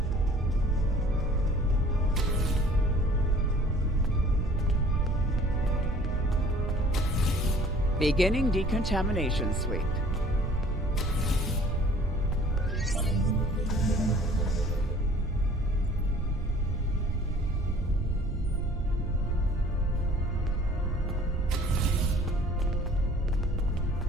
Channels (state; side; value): normal; both; correlation 0.52